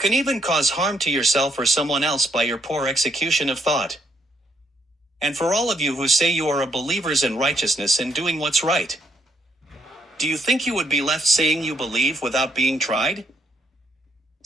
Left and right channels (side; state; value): both; normal; correlation 0.73